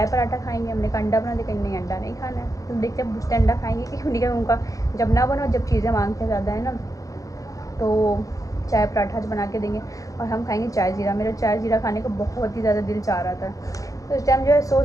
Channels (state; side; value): late; right; 0.16 ms